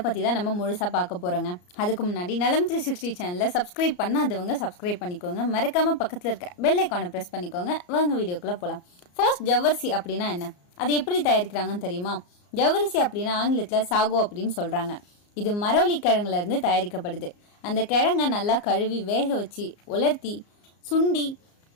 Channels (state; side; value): late; right; 34 ms